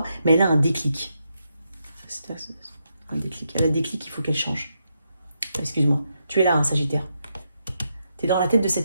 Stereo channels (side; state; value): both; inverted; correlation -0.82